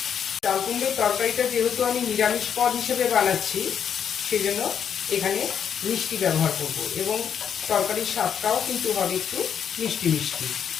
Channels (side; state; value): right; quieter; 8.1 dB